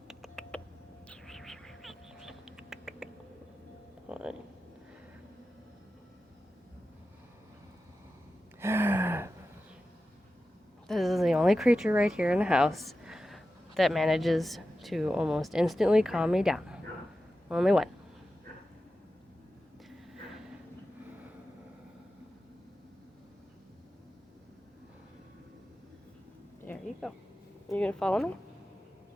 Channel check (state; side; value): normal; both; correlation 0.93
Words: This is the only creature right here in the house that manages to almost instantly calm me down. Only one. There you go. You gonna follow me?